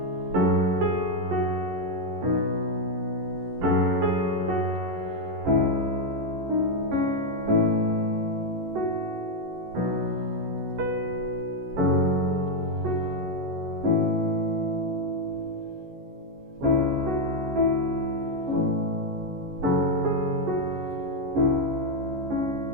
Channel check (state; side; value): late; left; 11 ms